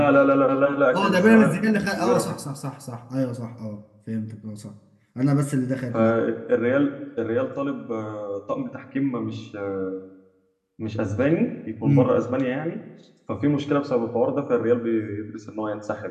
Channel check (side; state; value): both; identical; correlation 1.00